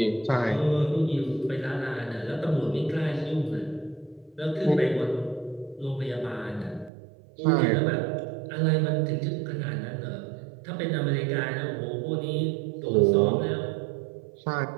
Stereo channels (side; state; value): left; drops out; at 6.9 s